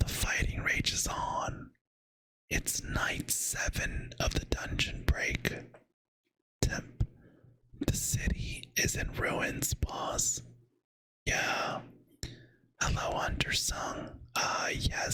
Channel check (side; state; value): both; identical; correlation 1.00